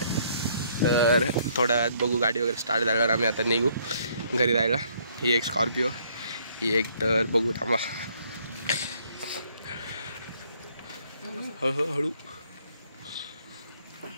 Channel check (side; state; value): both; inverted; correlation -0.65